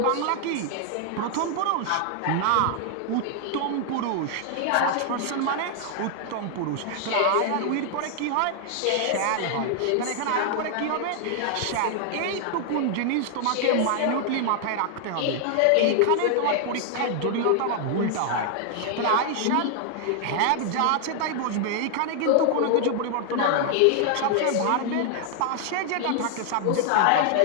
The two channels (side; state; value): both; different; correlation 0.00